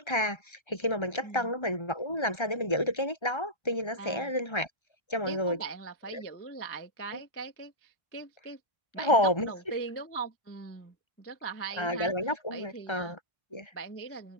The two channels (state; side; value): late; right; 1.3 ms